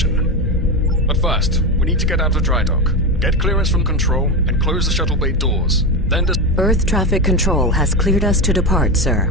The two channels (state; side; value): normal; both; correlation 0.16